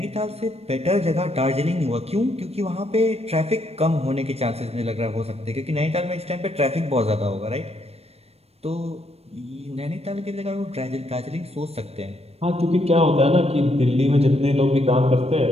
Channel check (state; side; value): late; left; 0.30 ms